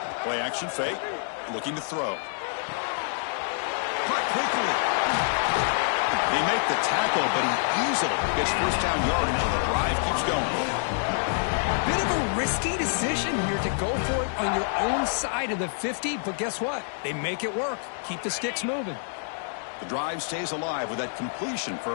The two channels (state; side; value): silent; right; digital silence